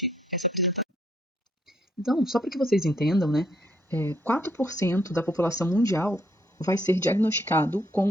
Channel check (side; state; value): both; normal; correlation 0.71